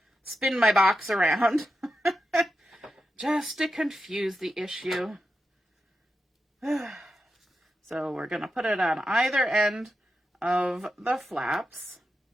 box around just to confuse the issue. So we're going to put it on either end of the flaps,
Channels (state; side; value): normal; both; correlation 0.88